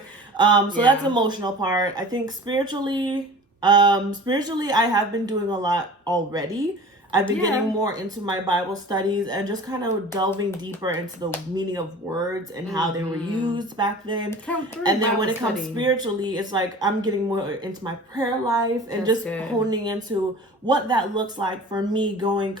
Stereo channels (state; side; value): normal; both; correlation 0.41